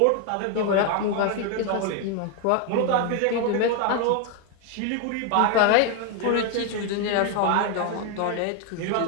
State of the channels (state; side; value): different; both; correlation 0.01